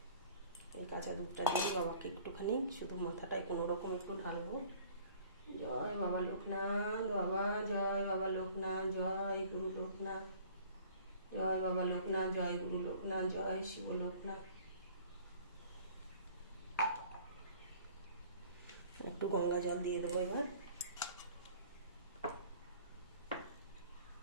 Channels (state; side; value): inverted; both; correlation -0.51